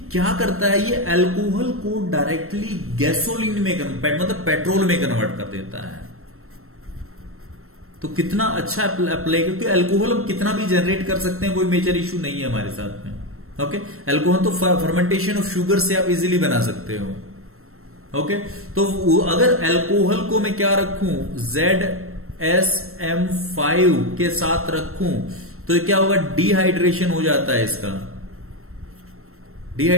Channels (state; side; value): late; left; 0.62 ms